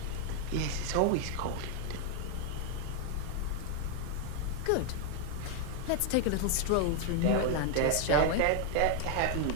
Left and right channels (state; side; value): different; both; correlation 0.00